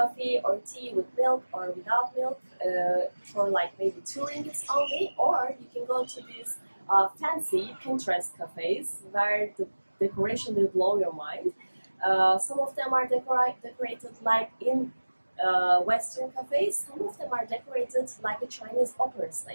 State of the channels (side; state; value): both; inverted; correlation -1.00